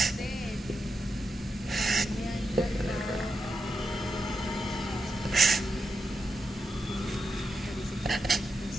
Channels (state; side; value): normal; both; correlation 0.86